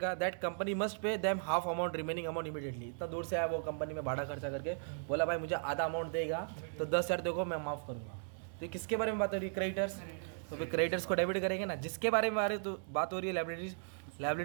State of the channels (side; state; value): left; silent; digital silence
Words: That company must pay them half amount remaining amount immediately. इतना दूर से आया वो, कंपनी में भाड़ा खर्चा करके बोला भाई मुझे आधा अमाउंट देगा, तो 10,000 देखो मैं माफ़ करूँगा। तो किसके बारे में बात हो रही है? क्रेडिटर्स। तो फिर क्रेडिटर्स को डेबिट करेंगे ना, जिसके बारे में बात हो रही है